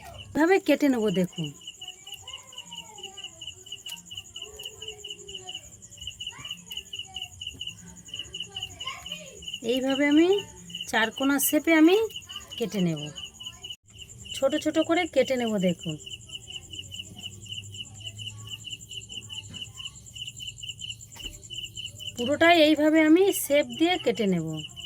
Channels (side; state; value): both; identical; correlation 1.00